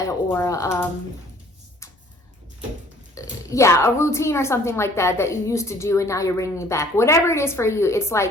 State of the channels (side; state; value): both; normal; correlation 0.55